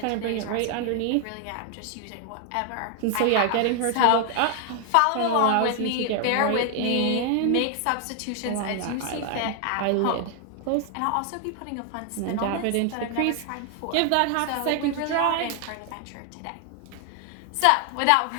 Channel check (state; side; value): different; both; correlation 0.00